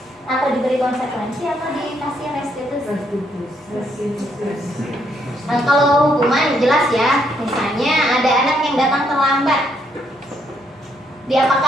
atau diberi konsekuensi atau dikasih restitusi? Nah, kalau hukuman jelas ya, misalnya ada anak yang datang terlambat,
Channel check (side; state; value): both; normal; correlation 0.73